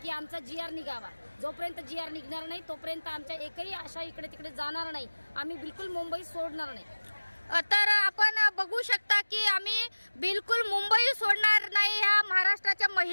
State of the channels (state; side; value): inverted; both; correlation -1.00